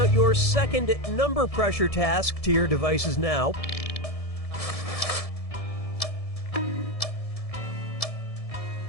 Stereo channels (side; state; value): right; late; 1.7 ms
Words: your second number pressure task to your devices now.